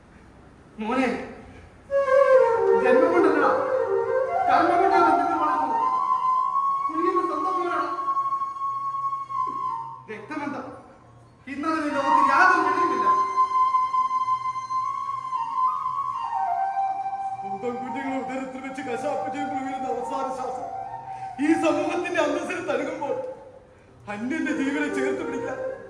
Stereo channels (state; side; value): identical; both; correlation 1.00